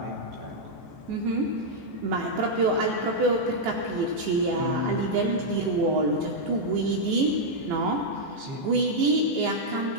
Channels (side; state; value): left; late; 14 ms